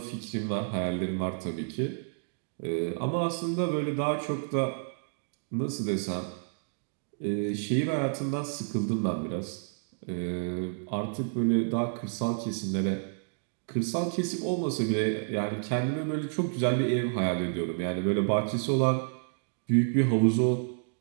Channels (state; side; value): silent; left; digital silence